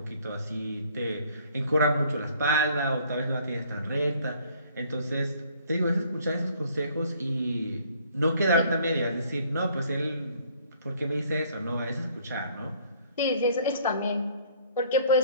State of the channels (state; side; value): inverted; both; correlation -0.59